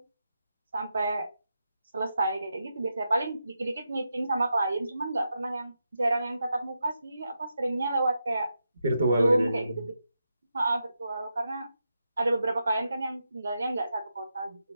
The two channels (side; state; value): both; inverted; correlation -0.86